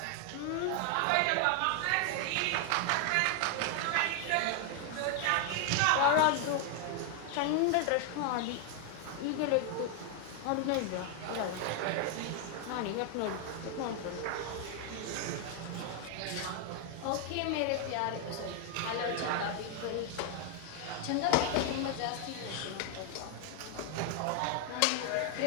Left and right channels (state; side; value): different; both; correlation 0.00